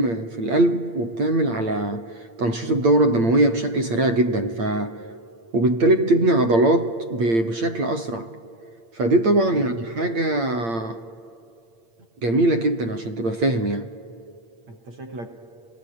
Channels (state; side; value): late; left; 8.8 ms